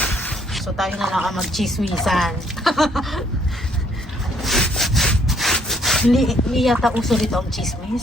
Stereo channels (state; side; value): normal; both; correlation 0.65